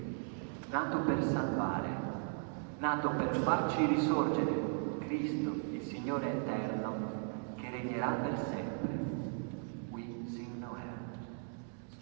nato per salvare, nato per farci risorgere, Cristo, il Signore eterno, che regnerà per sempre. We sing Noel.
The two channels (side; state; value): left; silent; 53 dB below the other